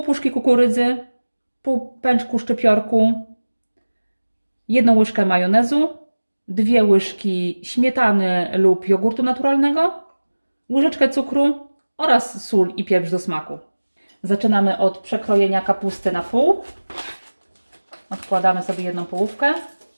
puszki kukurydzy, pół pęczku szczypiorku, 1 łyżkę majonezu, 2 łyżki śmietany lub jogurtu naturalnego, łyżeczkę cukru oraz sól i pieprz do smaku. Zaczynamy od przekrojenia kapusty na pół. Odkładamy sobie 1 połówkę,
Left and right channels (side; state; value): both; inverted; correlation -1.00